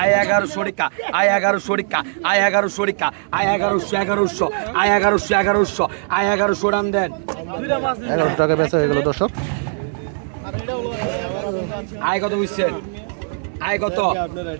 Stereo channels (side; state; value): left; silent; 66 dB below the other